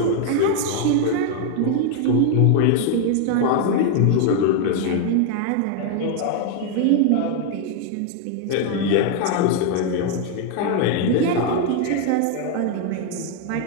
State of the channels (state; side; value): different; both; correlation 0.00